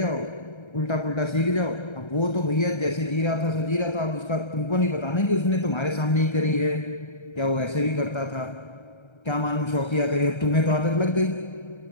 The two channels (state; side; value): late; right; 1.3 ms